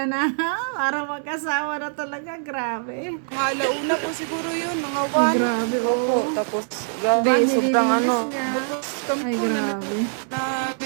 na para magkasawa na talaga. Grabe. Mga alauna po siguro yun, mga 1. Grabe, Opo, oh. tapos Diba, grabe, sobrang nililinis niya. Kami Ay, po na grabe.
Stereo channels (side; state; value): left; silent; digital silence